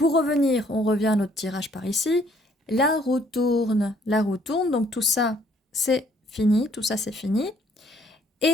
revenir, on revient à notre tirage par ici. La roue tourne, donc tout ça, c'est fini,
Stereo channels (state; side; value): normal; both; correlation 0.64